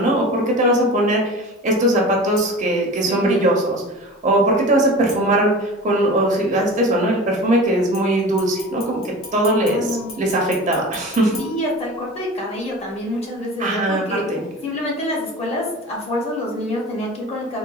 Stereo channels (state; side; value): normal; both; correlation 0.35